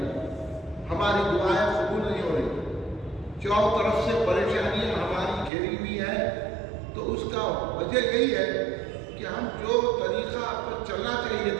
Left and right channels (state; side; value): drops out; left; at 5.5 s